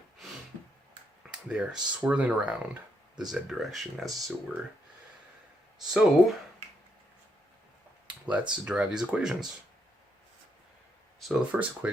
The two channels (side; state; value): both; normal; correlation 0.78